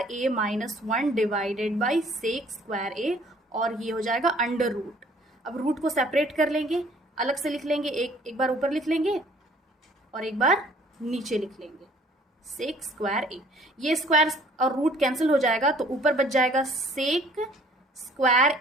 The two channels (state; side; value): normal; both; correlation 0.57